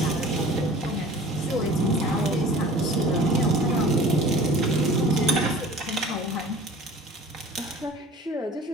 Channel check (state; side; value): normal; both; correlation 0.45